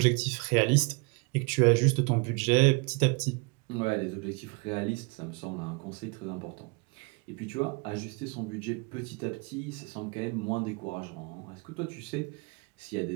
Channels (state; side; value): quieter; left; 30.0 dB